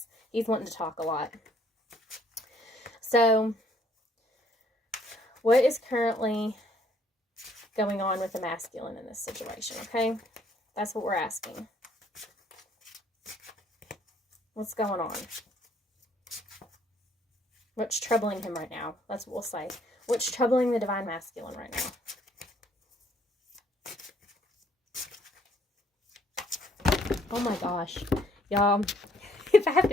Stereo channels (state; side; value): normal; both; correlation 0.64